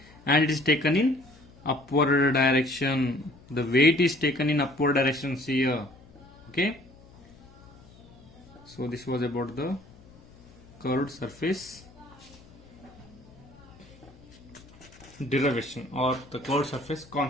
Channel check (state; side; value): noise; left; hum, 24 dB below the sound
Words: and it is taken in upward direction. The weight is taken in upward direction here. Okay, so this was about the curved surface derivation or the curved surface